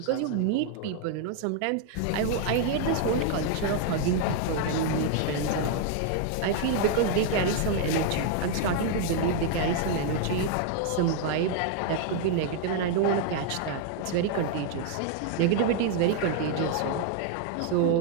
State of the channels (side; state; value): both; different; correlation 0.00